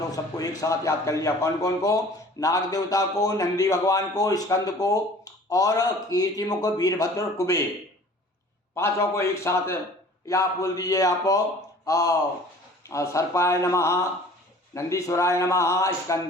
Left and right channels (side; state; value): both; normal; correlation 0.47